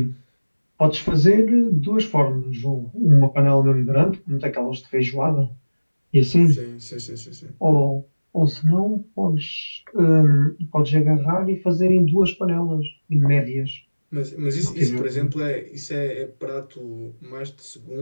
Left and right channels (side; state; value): both; inverted; correlation -1.00